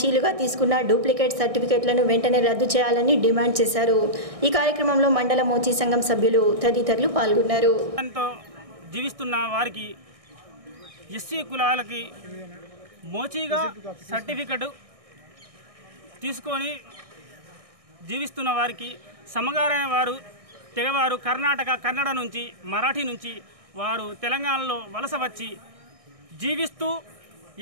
తీసుకున్న డూప్లికేట్ సర్టిఫికెట్లను వెంటనే రద్దు చేయాలని డిమాండ్ చేశారు. ఈ కార్యక్రమంలో మండల మోచి సంఘం సభ్యులు తదితరులు పాల్గొన్నారు. జీవిస్తున్న వారికి ఎస్సీ కులాలకి మోచీగా సర్టిఫికెట్ తీసుకొని జీవిస్తున్న వారికి సమగారైన వారు తెగవారు కన్నడ నుంచి, మరాఠీ నుంచి వారు తెలంగాణలో వలస వచ్చి జీవిస్తూ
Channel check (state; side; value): late; left; 1.6 ms